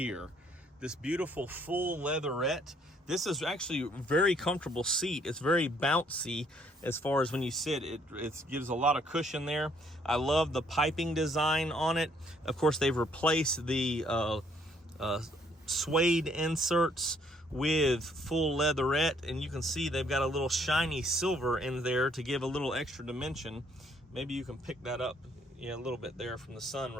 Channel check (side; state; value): both; normal; correlation 0.66